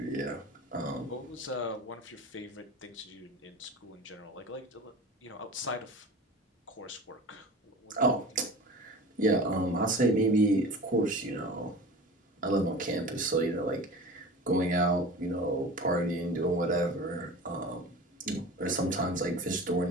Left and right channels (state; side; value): normal; both; correlation 0.36